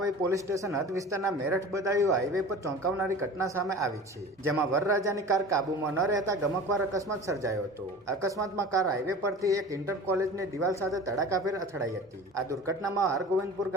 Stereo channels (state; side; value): normal; both; correlation 0.38